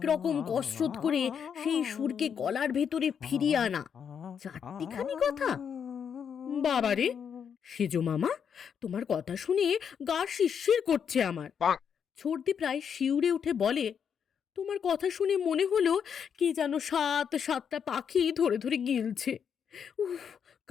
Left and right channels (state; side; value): quieter; right; 7.5 dB